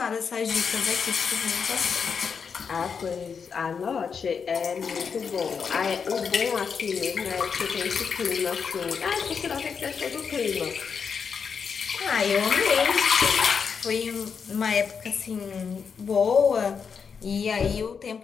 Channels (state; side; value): quieter; right; 6.2 dB